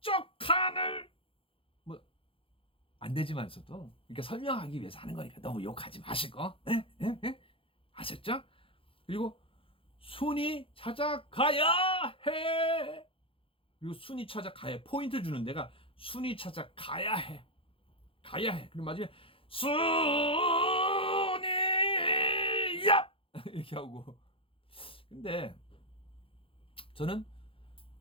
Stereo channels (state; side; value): late; right; 0.26 ms